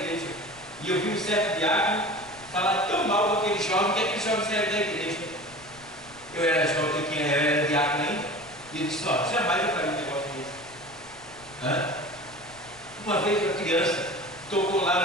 E eu vi um certo diácono falar tão mal daquele jovem que aquele jovem saiu da igreja. Eu era jovem, eu era diácono ainda, e ele disse: ó, jamais eu faria um negócio desse. Uma vez uma criança tocou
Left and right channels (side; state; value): left; noise; rumble, 24 dB below the sound